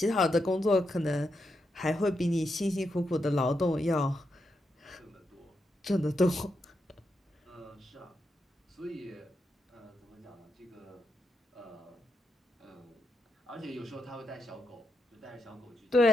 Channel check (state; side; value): normal; both; correlation 0.84